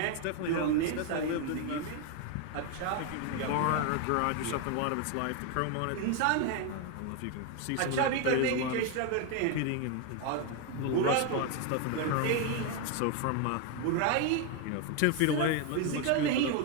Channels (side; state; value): both; different; correlation 0.01